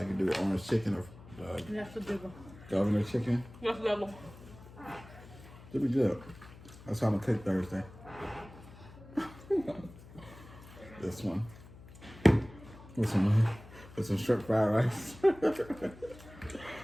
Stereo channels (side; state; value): left; noise; hum, 19 dB below the sound